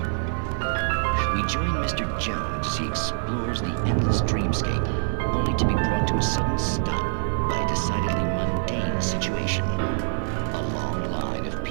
We join Mr. Jones as he explores the endless dreamscape, only to be brought to a sudden stop by a decidedly mundane situation. A long line of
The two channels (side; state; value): left; silent; digital silence